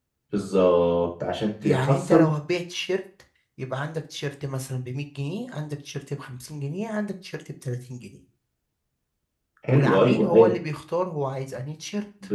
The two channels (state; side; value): identical; both; correlation 1.00